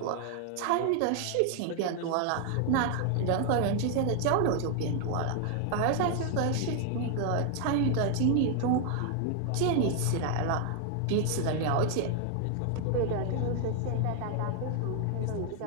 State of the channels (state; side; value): different; both; correlation 0.00